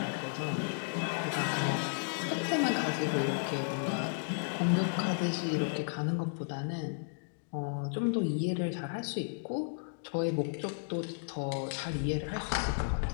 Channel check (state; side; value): silent; right; digital silence